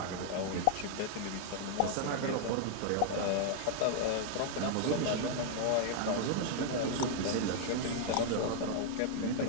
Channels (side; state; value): both; different; correlation -0.01